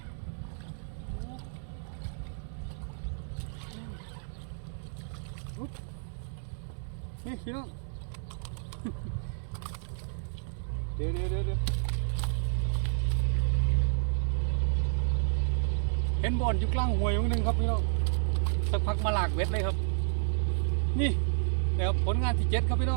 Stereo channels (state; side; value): silent; left; digital silence